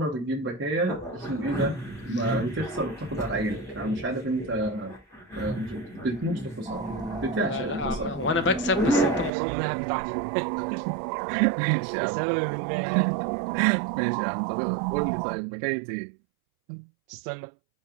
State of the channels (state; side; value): drops out; left; at 9.3 s